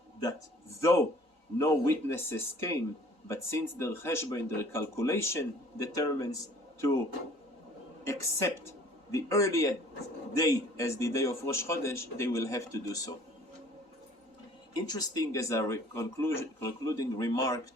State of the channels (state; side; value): late; left; 3.9 ms